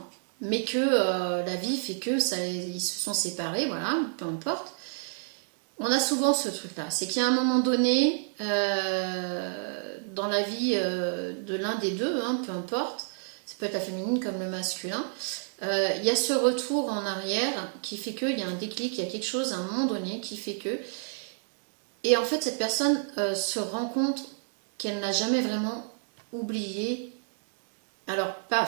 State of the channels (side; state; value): left; silent; digital silence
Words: mais que la vie fait que ils se sont séparés, voilà, peu importe, on a souvent ce truc-là. C'est qu'il y a un moment donné, dans la vie de l'un des deux, hein, peu importe, ça peut être la féminine comme le masculin, il y a ce retour en arrière qui fait qu'il y a un déclic, il y a quelque chose à un moment donné qui fait que... Et en fait, cette personne se rend compte qu'elle n'a jamais vraiment oublié. Alors, pas